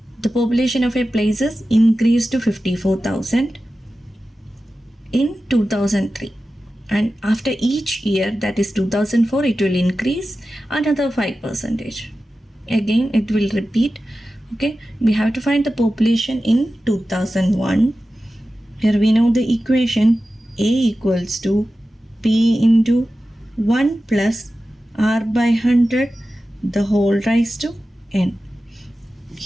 the population of a place is increased to 54,000 in 2003. And after each year, that is 2004, it will increase another 5%. Again, it will repeat. Okay, we have to find the population in 2001. Here we know the equation A equals to P into 1 plus R by 100 the whole raised to N.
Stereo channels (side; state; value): both; normal; correlation 0.94